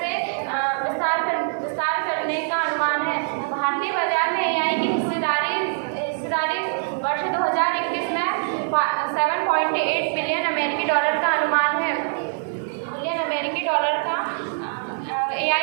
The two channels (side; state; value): left; silent; 63 dB below the other